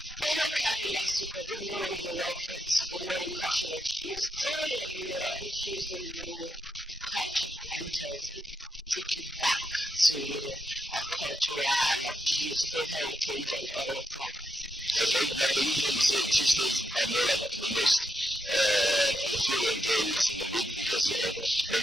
Everyone carefully asked to good morning and welcome to Good Morning Culture of Tuesday, and every Tuesday we do culture enters and take you back to our culture and our beautiful heritage and all of that. Okay, like I usually say, Tuesdays are more like the most fulfilling days in the week because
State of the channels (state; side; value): normal; both; correlation 0.82